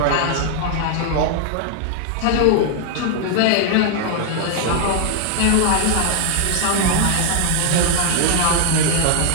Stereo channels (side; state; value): both; different; correlation 0.00